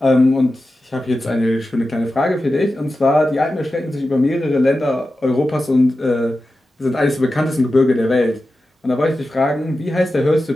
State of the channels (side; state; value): both; normal; correlation 0.92